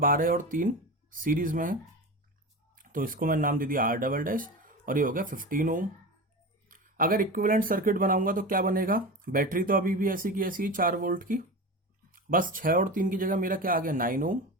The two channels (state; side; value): normal; both; correlation 0.27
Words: और 3 सीरीज में है, तो इसको मैंने नाम दे दिया R डबल डैश, और ये हो गया 15 ओम। अगर इक्विवेलेंट सर्किट बनाऊंगा तो क्या बनेगा? बैटरी तो अभी भी ऐसी की ऐसी ही 4 वोल्ट की, बस 6 और 3 की जगह मेरा क्या आ गया 9 ओम,